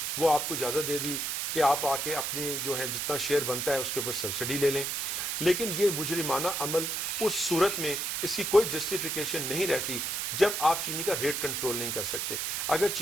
وہ آپ کو اجازت دے دی کہ آپ آ کے اپنی جو ہے جتنا شیئر بنتا ہے اس کے اوپر سبسڈی لے لیں۔ لیکن یہ مجرمانہ عمل اس صورت میں اس کی کوئی جسٹیفیکیشن نہیں رہتی جب آپ چینی کا ریٹ کنٹرول نہیں کر سکتے۔ اگر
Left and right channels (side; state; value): right; noise; hiss, 1 dB below the sound